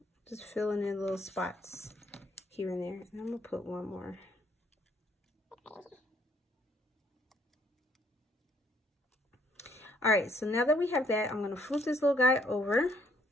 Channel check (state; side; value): normal; both; correlation 0.67